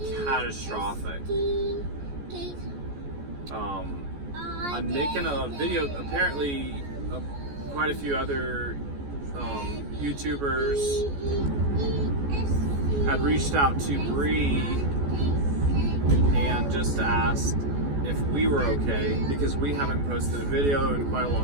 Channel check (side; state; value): left; late; 14 ms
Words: catastrophic. I'm making a video. Apparently, quite a few other YouTubers had reached out to Bree and just asked if we were okay, because we haven't posted a video in quite a